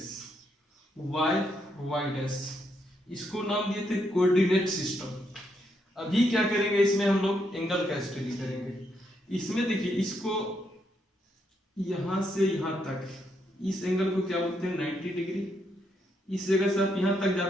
वाई डैश, इसको नाम दिए थे कोऑर्डिनेट सिस्टम। अभी क्या करेंगे, इसमें हम लोग एंगल का स्टडी करेंगे। इसमें देखिए, इसको यहां से यहां तक, इस एंगल को क्या बोलते हैं 90 डिग्री। इस जगह से आप यहां तक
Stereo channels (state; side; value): normal; both; correlation 0.78